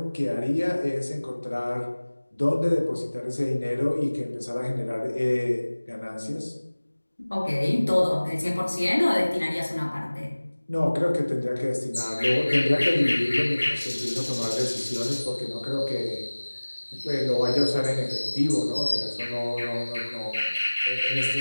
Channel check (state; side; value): inverted; both; correlation -1.00